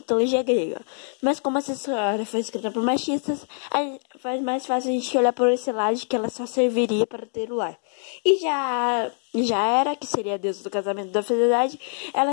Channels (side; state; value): right; silent; 56 dB below the other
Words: grega. Mas como essa história foi escrita por machistas, faz mais fácil a gente olhar por esse lado de que ela só serviria para ter o lar. E já era, que seria a deusa do casamento da fidelidade,